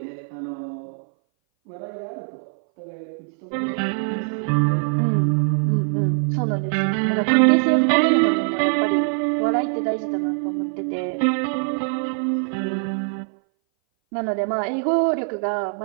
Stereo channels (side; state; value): left; silent; 59 dB below the other